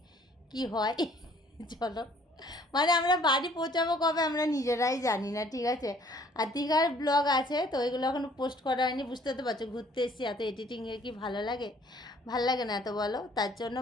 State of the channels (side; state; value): both; normal; correlation 0.58